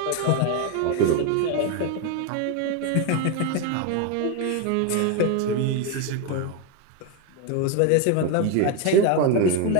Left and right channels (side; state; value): both; different; correlation 0.02